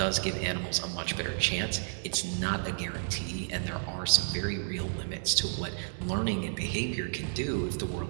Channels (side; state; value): left; silent; 57 dB below the other